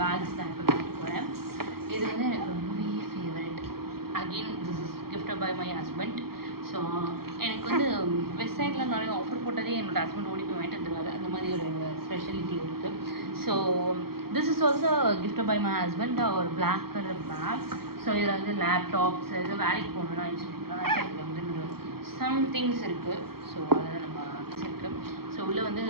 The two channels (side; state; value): left; late; 0.94 ms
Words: பேக்ஸ் தான் இப்போ வாங்க போகிறேன். இது வந்து எனக்கு ரொம்பவே favourite. Again this is gifted by my husband. So எனக்கு வந்து வெப்சைட்டில் நிறைய ஆஃபர் போட்டதே என்னோடய ஹஸ்பண்ட் ஓடி போய் வாங்கிட்டு வந்துடுவாரு. அந்த மாதிரி ஒரு ஸ்பெஷாலிட்டி இருக்குது. So this is also gifted by my husband, ஒரு பிளாக் கலர் பேக். ஸோ இதில் வந்து லேப்டாப்ஸ் இது வேலைக்கு போகணுன்னா இதில் வந்து சம் திங்ஸ் இருக்குது. ஸோ அதை நம்ம வச்சுருக்கேன். ஸோ உள்ளே வந்து